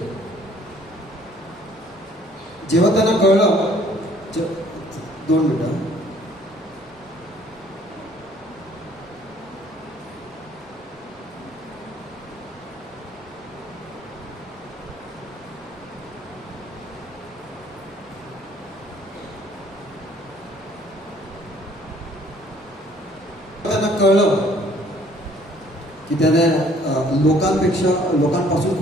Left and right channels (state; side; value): normal; both; correlation 0.59